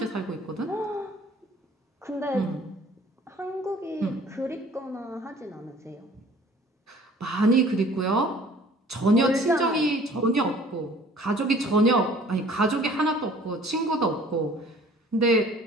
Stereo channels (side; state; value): both; normal; correlation 0.52